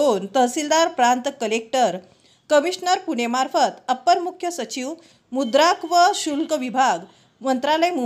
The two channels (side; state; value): both; identical; correlation 1.00